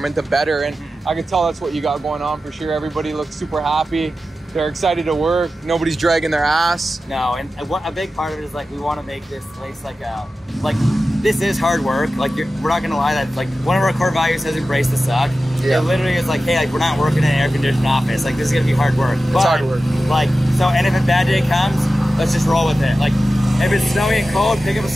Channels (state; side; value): normal; both; correlation 0.93